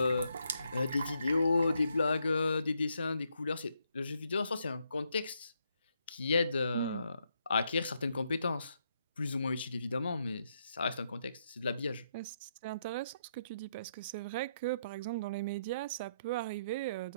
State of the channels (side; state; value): both; inverted; correlation -0.77